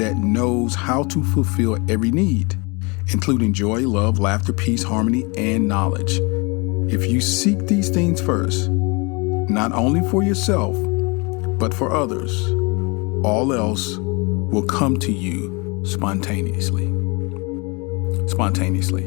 knows how to fulfill every need, including joy, love, laughter, peace, harmony, and knowledge. If you seek these things first, not only for yourself, but for others, all else will come to you spontaneously.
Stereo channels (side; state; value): right; quieter; 29.2 dB